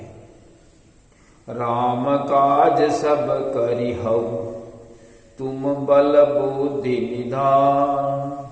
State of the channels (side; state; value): both; identical; correlation 1.00